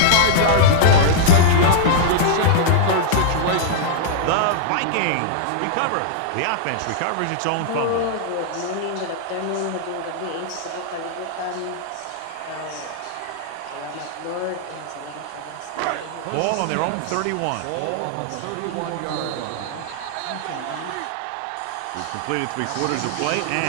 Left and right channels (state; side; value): different; both; correlation -0.01